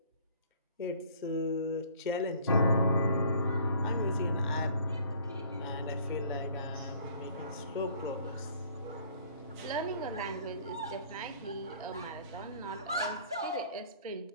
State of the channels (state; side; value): inverted; both; correlation -0.55